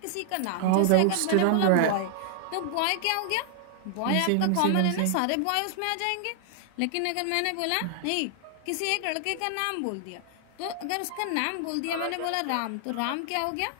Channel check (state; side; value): different; both; correlation 0.00